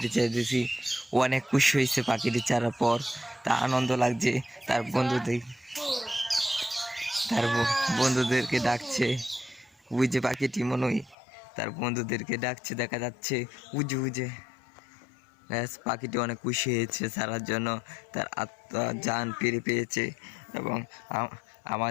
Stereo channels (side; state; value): right; drops out; at 11.2 s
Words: ছেড়ে দিয়েছি, ও অনেক খুশি হয়েছে পাখিটি ছাড়ার পর, তা আনন্দ লাগছে। তার বন্ধুদেরকে ডাকছে, ওই যে পাখিটি মনে হয় তার বন্ধুদেরকে ডাকছে, দেখা যাচ্ছে উজে উজে। ব্যাস পাখিটি অনেক খুশি হয়েছে ছাড়ার জন্য, তার আত্মা জান ফিরে পেয়েছে। এবং